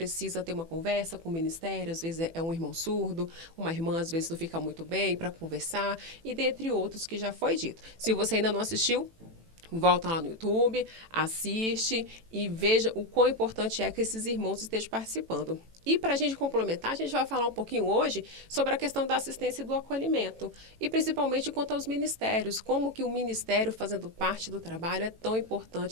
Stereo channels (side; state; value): left; late; 18 ms